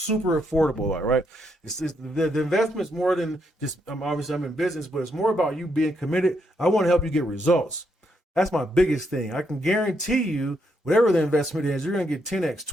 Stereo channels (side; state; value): both; normal; correlation 0.76